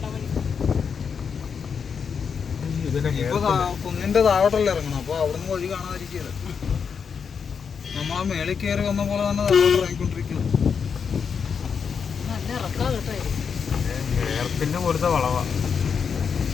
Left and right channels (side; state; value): right; quieter; 6.4 dB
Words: കുന്നിന്റെ താഴോട്ടല്ലേ ഇറങ്ങണം, അപ്പൊ അവിടുന്ന് വഴി കാണാതിരിക്കല്. നമ്മളാ മേളിൽ കയറി വന്ന പോലെ തന്നെ താഴോട്ട് ഇറങ്ങിക്കൊണ്ടിരിക്കണം.